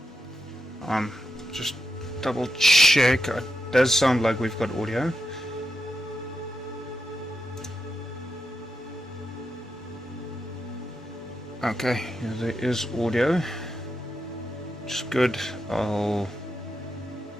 Just double check. It does sound like we've got audio. Okay, yeah, there is audio. Which is good. I'll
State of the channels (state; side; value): normal; both; correlation 0.86